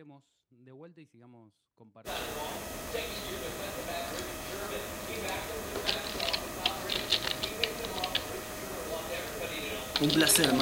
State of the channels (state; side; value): identical; both; correlation 1.00